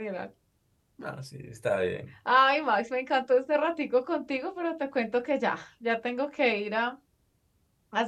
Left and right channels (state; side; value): identical; both; correlation 1.00